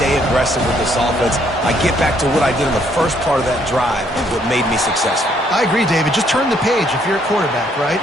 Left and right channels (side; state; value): both; normal; correlation 0.68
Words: aggressive with this offense. I get back to what I did in the first part of that drive, what made me successful. I agree, David. Just turn the page if you're a quarterback, right?